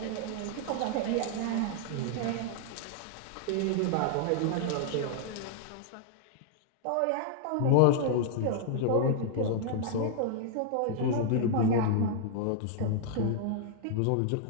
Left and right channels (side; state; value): both; different; correlation -0.01